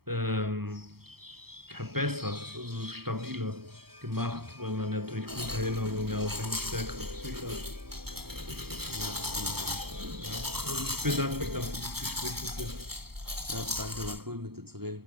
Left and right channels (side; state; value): left; late; 0.95 ms